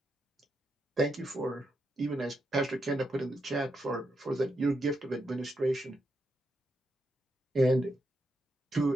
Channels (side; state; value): both; normal; correlation 0.83